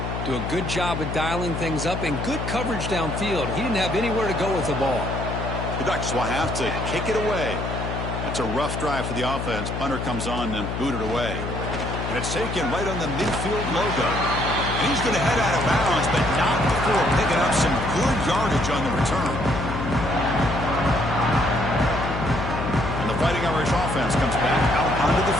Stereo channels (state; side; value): noise; left; hum, 4 dB below the sound